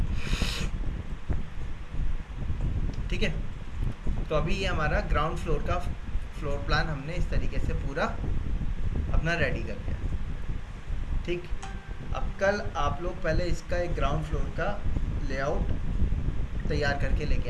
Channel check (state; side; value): identical; both; correlation 1.00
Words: ठीक है, तो अभी ये हमारा ग्राउंड फ्लोर का फ्लोर प्लान हमने इस तरीके से पूरा अपना रेडी कर लिया। ठीक, अब कल आप लोग पहले इसका एक ग्राउंड फ्लोर का लेआउट तैयार करके लेके